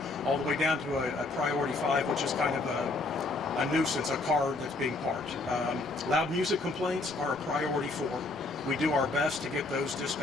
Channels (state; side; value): quieter; right; 3.2 dB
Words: all the way down to a priority 5, which is kind of a nuisance, a car that's being parked. Loud music complaints are a priority 4. We do our best to get those